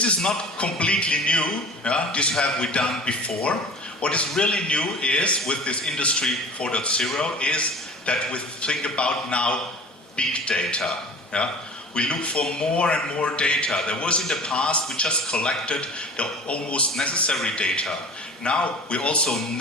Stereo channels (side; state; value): both; normal; correlation 0.41